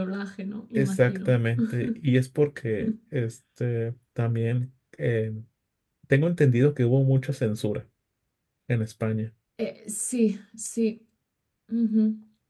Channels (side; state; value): both; identical; correlation 1.00